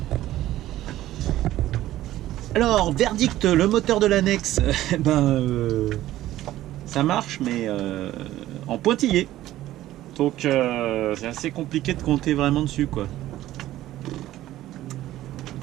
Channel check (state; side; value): quieter; left; 14.5 dB